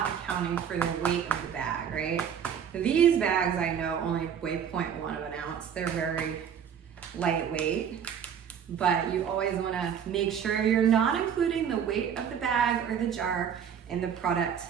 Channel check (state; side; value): quieter; left; 8.1 dB